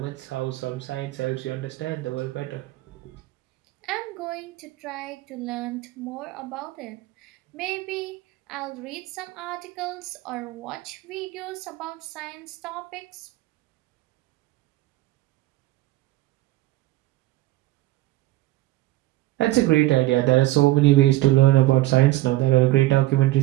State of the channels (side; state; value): left; quieter; 17.4 dB